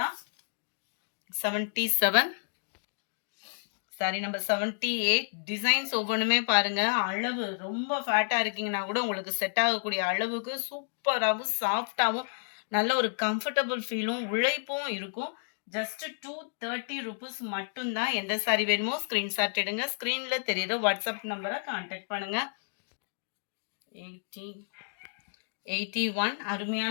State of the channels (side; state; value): right; silent; digital silence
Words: 77 சாரி நம்பர் 78 டிசைன்ஸ் ஒவ்வொன்றுமே பாருங்க. அளவு ரொம்ப ஃபேட்டா இருக்கீங்கன்னா கூட உங்களுக்கு செட் ஆகக்கூடிய அளவுக்கு சூப்பராகவும் சாஃப்டாகவும் நல்ல ஒரு கம்ஃபர்டபுள் ஃபீலும் உழைப்பும் இருக்கும். ஜஸ்ட் 230 rupees மட்டும்தான். எந்த சாரி வேணுமோ ஸ்க்ரீன்ஷாட் எடுங்க. ஸ்க்ரீனில் தெரியுற வாட்ஸ்அப் நம்பரை கான்டாக்ட் பண்ணுங்க. 81